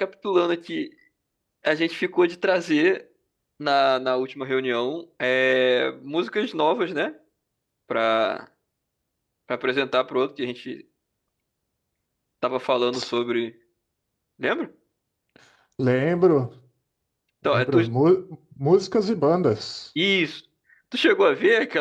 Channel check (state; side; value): identical; both; correlation 1.00